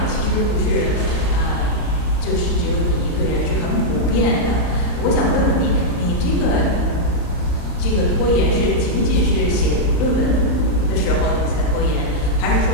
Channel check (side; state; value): right; late; 34 ms